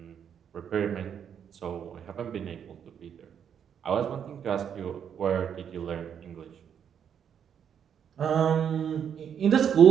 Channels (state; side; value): quieter; left; 8.3 dB